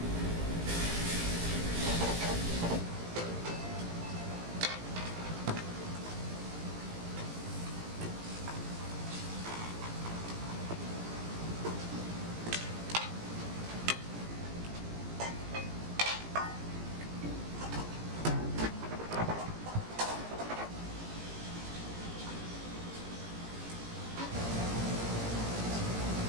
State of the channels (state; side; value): late; left; 18 ms